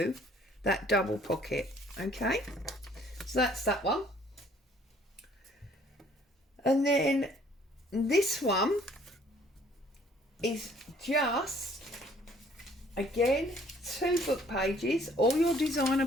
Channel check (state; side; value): normal; both; correlation 0.59